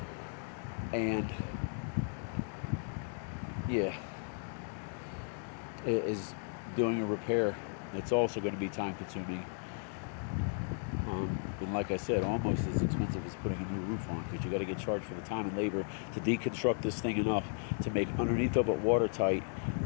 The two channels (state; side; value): silent; right; 54 dB below the other